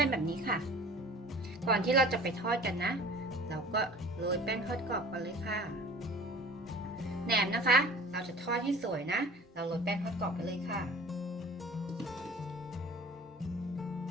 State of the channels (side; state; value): both; normal; correlation 0.44